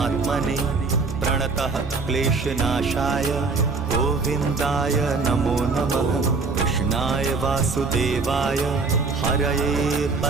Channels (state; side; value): quieter; left; 4.2 dB